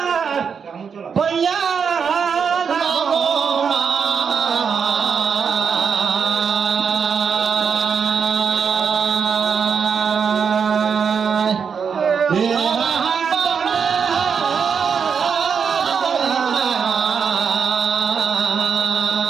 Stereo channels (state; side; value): quieter; left; 6.5 dB